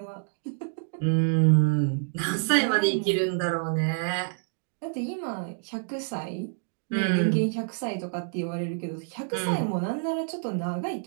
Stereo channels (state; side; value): silent; left; digital silence